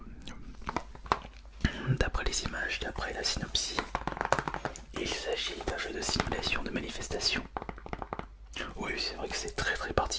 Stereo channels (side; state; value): both; identical; correlation 1.00